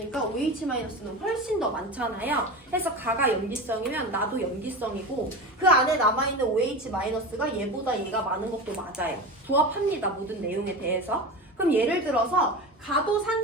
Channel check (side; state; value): both; normal; correlation 0.27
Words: OH 마이너스는 훨씬 더 많잖아요. 해서 가가 염기성이면 나도 염기성이고 그 안에 남아있는 OH 마이너스가 얘보다 얘가 많은 것도 맞아요. 조합합니다. 모든 내용에 대해서. 그럼 예를 들어서 가도